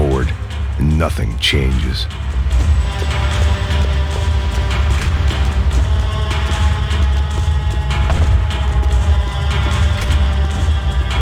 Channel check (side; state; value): both; identical; correlation 1.00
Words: and nothing changes.